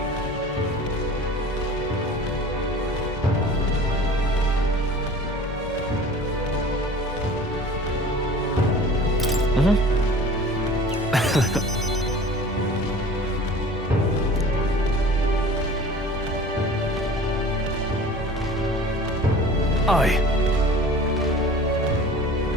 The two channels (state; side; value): normal; both; correlation 0.42